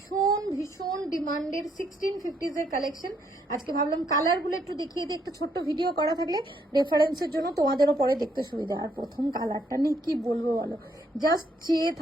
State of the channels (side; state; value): both; normal; correlation 0.72